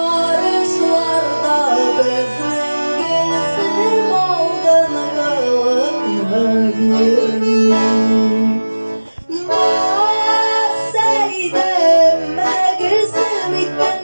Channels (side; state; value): both; inverted; correlation -1.00